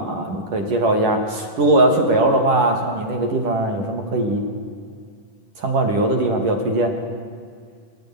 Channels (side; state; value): left; late; 10 ms